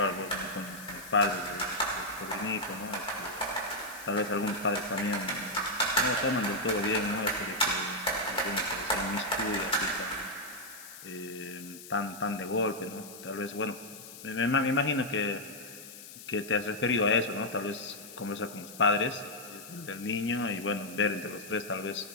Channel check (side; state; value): left; noise; hiss, 15 dB below the sound